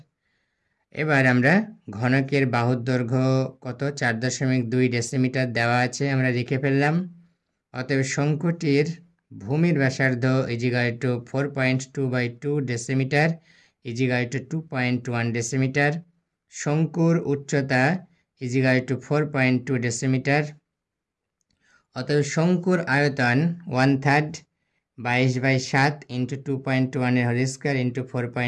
এবার আমরা ঘনকের বাহুর দৈর্ঘ্য কত? 4.2 ডেসিমিটার দেওয়া আছে, আমরা লিখে ফেললাম। অতএব শঙ্কুটির ভূমির ব্যাসার্ধ equal to 4.2/2 decimetre equal to 2.1 decimetre. শঙ্কুর উচ্চতা ইজিক্যাল টু 4.2 ডেসিমিটার। অতএব শঙ্কুর আয়তন 1/3 22/7 ইন্টু 2.1 এর হোল স্কয়ার ইন্টু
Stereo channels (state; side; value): identical; both; correlation 1.00